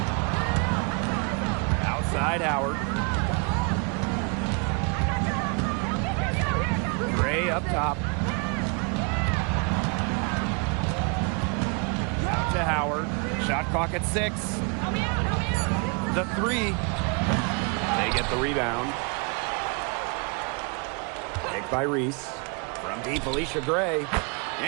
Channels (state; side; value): quieter; left; 34.0 dB